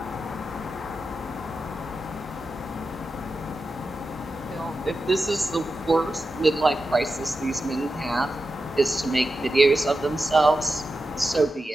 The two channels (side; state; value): both; normal; correlation 0.91